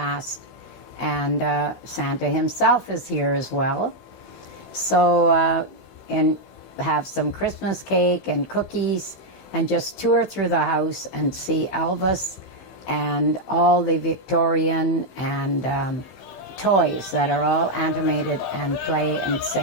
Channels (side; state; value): right; late; 15 ms